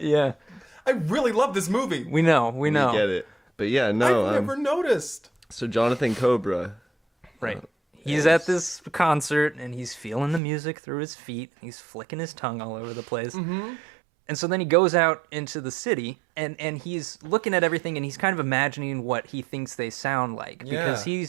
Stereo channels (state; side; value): drops out; left; at 10.4 s